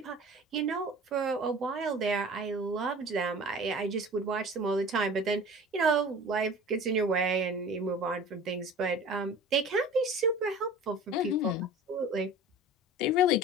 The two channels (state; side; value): normal; both; correlation 0.40